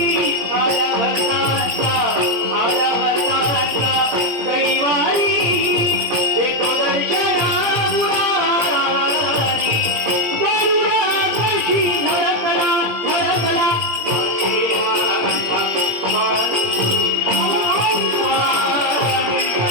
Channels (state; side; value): late; left; 17 ms